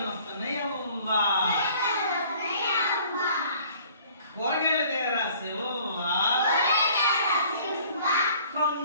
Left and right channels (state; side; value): inverted; both; correlation -0.54